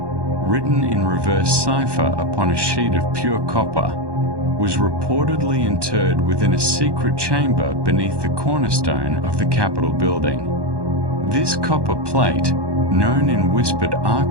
in reverse cipher upon a sheet of pure copper, was reportedly interred within a secret chamber beneath the cornerstone of the Capitol building. This copper plate, known in whispered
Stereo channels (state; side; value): late; left; 1.2 ms